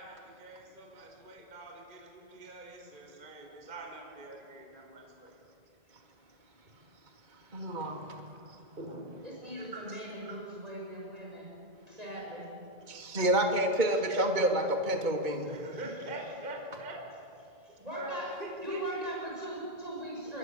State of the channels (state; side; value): late; left; 2.2 ms